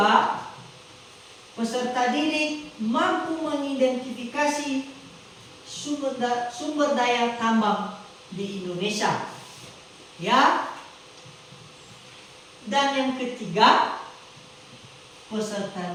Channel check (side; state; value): both; identical; correlation 1.00